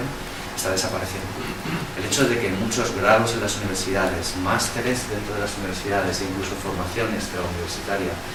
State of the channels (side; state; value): both; identical; correlation 1.00